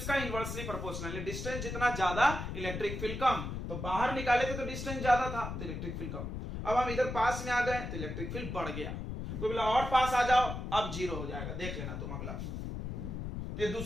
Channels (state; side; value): noise; left; rumble, 5 dB below the sound